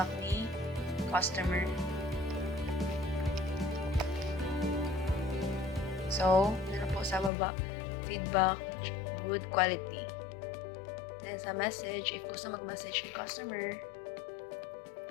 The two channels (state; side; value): drops out; right; at 7.3 s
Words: ni customer. So, na po sa baba, feedback, good quality. Then, sa message, if gusto mag-message ni customer,